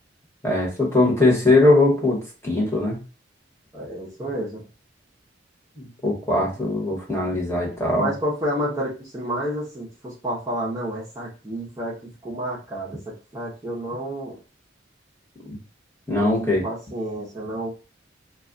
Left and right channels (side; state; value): both; normal; correlation 0.61